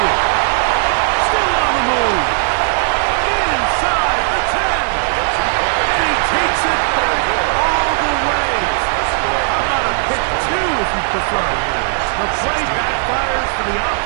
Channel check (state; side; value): silent; left; digital silence